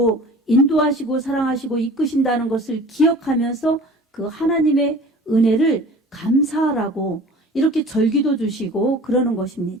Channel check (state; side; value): normal; both; correlation 0.44